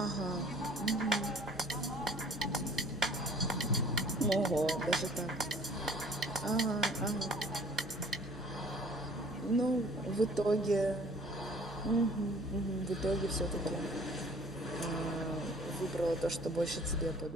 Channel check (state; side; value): normal; both; correlation 0.52